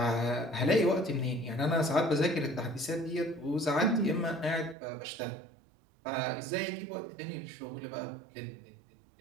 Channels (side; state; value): left; drops out; at 4.8 s